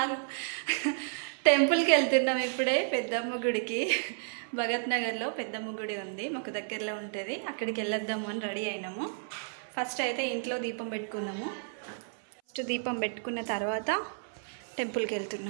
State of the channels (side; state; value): left; silent; 57 dB below the other